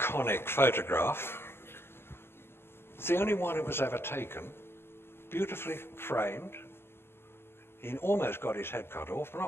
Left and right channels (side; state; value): right; late; 0.11 ms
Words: photograph. It's the only one that was ever taken, beautifully framed. He almost got his head cut off, but